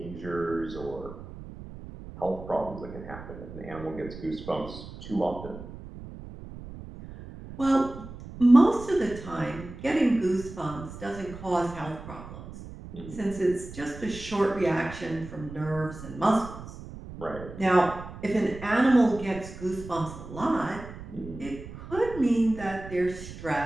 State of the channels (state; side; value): noise; right; rumble, 13 dB below the sound